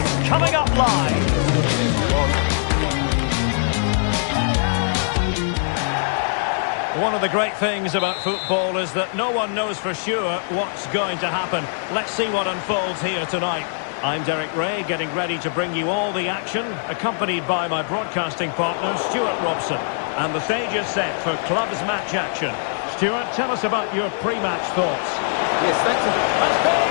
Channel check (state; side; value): silent; right; digital silence